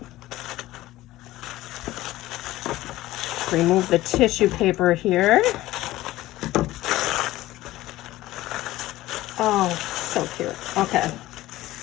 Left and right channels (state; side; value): quieter; right; 16.6 dB